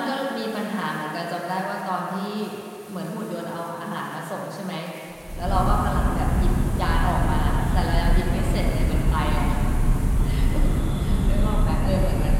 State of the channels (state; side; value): identical; both; correlation 1.00